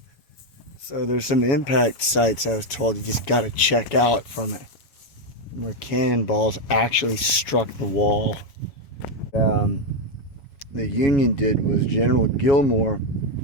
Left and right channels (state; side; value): late; right; 7.1 ms